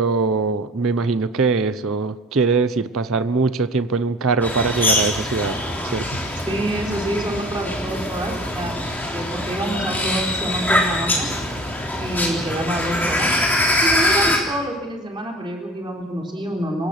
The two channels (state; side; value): normal; both; correlation 0.41